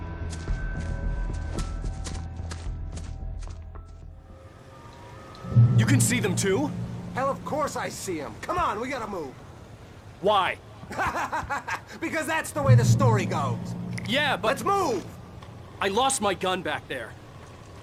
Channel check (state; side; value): identical; both; correlation 1.00